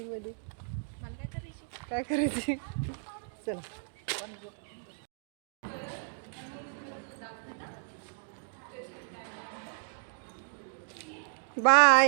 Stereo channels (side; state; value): left; silent; digital silence